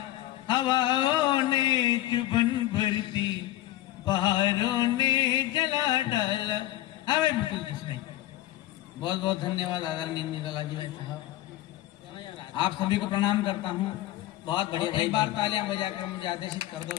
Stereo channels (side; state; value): right; quieter; 15.1 dB